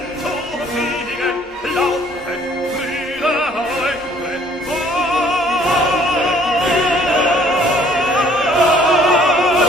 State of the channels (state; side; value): normal; both; correlation 0.59